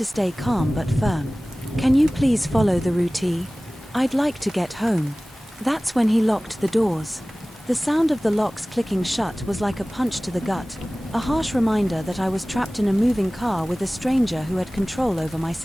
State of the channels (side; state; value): both; normal; correlation 0.98